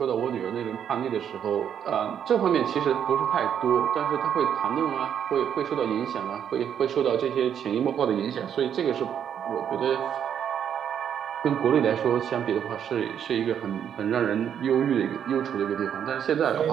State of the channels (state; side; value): quieter; left; 8.8 dB